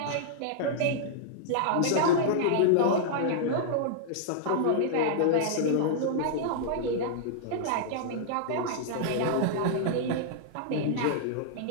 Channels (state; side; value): different; both; correlation -0.02